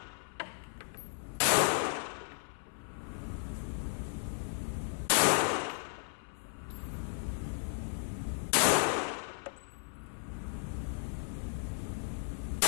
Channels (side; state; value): right; silent; 54 dB below the other